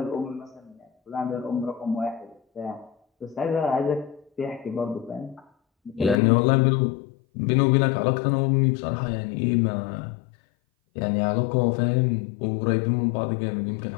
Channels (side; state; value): right; drops out; at 6.2 s